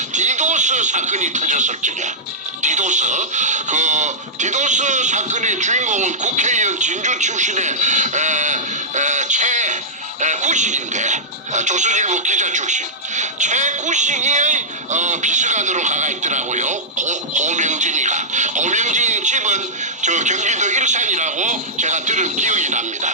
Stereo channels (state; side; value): normal; both; correlation -0.12